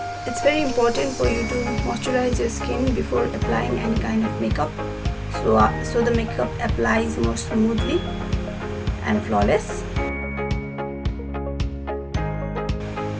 It's very important for you to moisturize your skin before applying any kind of makeup, so the makeup applies more smoothly and flawless.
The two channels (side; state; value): both; identical; correlation 1.00